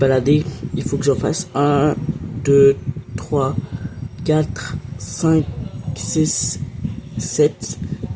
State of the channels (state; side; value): identical; both; correlation 1.00